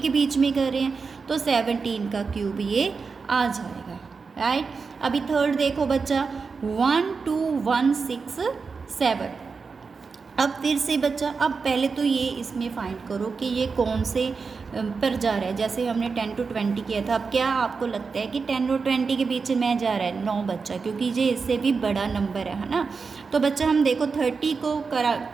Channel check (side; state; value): left; quieter; 4.9 dB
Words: के बीच में कर रहे हैं, तो 17 का क्यूब ये आ जाएगा, राइट। अभी थर्ड देखो बच्चा 12167, अब फिर से बच्चा, अब पहले तो ये इसमें फाइंड करो कि ये कौन से पर जा रहा है। जैसे हमने 10 to 20 किया था, अब क्या आपको लगता है कि 10 और 20 के बीच में जा रहा है? 9 बच्चा, क्योंकि ये इससे भी बड़ा नंबर है ना। तो बच्चा हम देखो 30 को